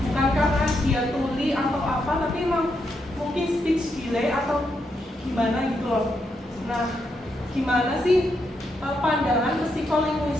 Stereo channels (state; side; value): normal; both; correlation 0.81